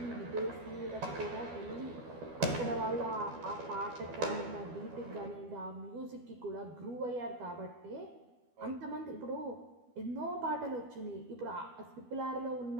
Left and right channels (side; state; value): left; late; 12 ms